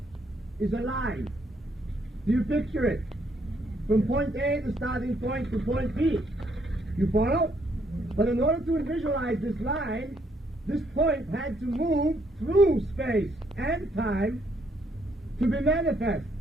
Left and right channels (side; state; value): both; normal; correlation 0.71